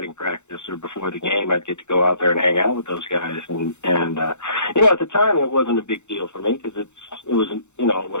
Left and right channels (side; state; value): right; late; 0.83 ms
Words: practice or before the game. I'd get to go out there and hang out with those guys, and at the time it wasn't a big deal for me because it was what